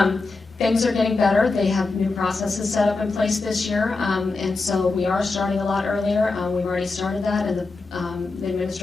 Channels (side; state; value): right; quieter; 3.7 dB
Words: Things are getting better. They have new processes set up in place this year, and so we are starting a lot earlier. We've already started that, and the